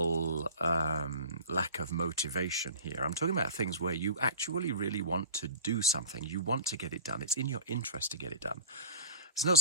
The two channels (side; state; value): both; inverted; correlation -0.35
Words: lack of motivation here. I'm talking about things where you actually really want to do something. You want to get it done. It's in your interest to get it done. It's not